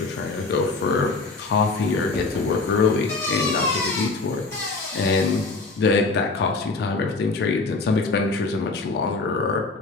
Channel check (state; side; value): quieter; right; 3.8 dB